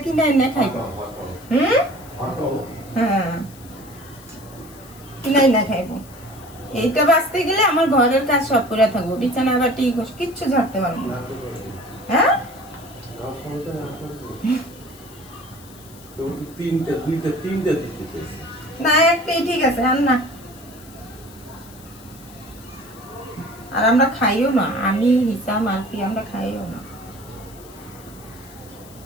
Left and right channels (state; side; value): noise; left; hiss, 22 dB below the sound